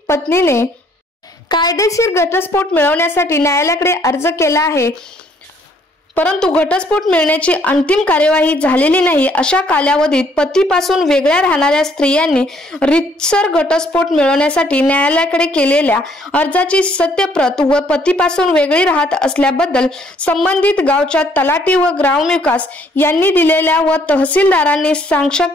पत्नीने कायदेशीर घटस्फोट मिळवण्यासाठी न्यायालयाकडे अर्ज केला आहे परंतु घटस्फोट मिळण्याची अंतिम कार्यवाही झालेली नाही, अशा कालावधीत पतीपासून वेगळ्या राहणाऱ्या स्त्रियांनी रीतसर घटस्फोट मिळवण्यासाठी न्यायालयाकडे केलेल्या अर्जाची सत्यप्रत व पतीपासून वेगळी राहत असल्याबद्दल संबंधित गावच्या तलाठी व ग्रामविकास यांनी दिलेल्या व तहसीलदारांनी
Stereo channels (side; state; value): both; normal; correlation 0.65